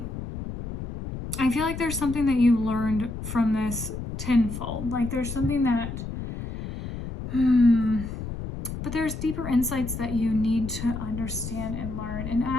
I feel like there's something that you learned from this tenfold. Like there's something that, but there's deeper insights that you need to understand and learn. And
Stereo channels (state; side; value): noise; left; rumble, 7 dB below the sound